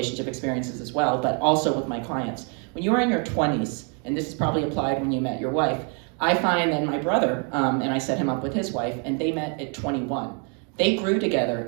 experiences as well, but also with my clients. When you are in your 20s, and this is probably applied when you met your wife, I find that my brother, and I set him up with his wife, and they met at 21. They grew together,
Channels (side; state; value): left; quieter; 37.4 dB